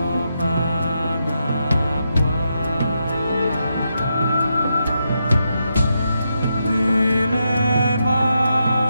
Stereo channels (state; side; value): inverted; both; correlation -0.83